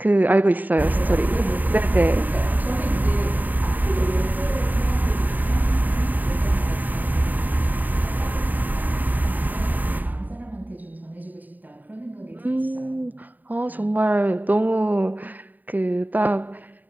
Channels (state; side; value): late; left; 0.085 ms